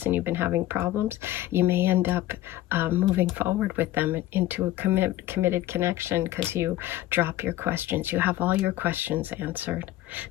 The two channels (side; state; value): right; quieter; 14.9 dB